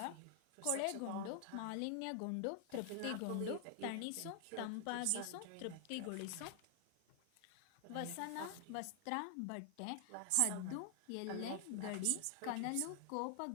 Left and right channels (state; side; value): different; both; correlation 0.00